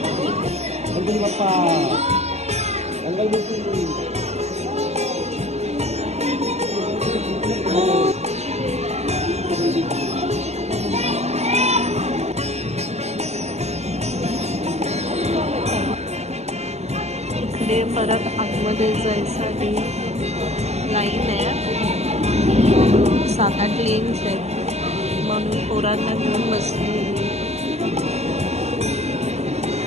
इकडे परत आतमध्ये जायसाठी लाईन आहे. 7-8 लेन्स आहेत, म्हणून पोरांना घेऊन बसली.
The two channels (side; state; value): left; late; 0.32 ms